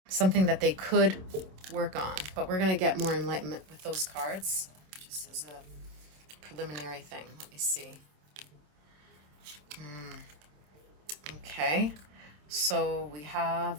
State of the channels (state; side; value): late; left; 27 ms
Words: something that they could work on? But we're going to get more enlightenment with those cards, just as a preliminary thing. Let me see. Okay. So we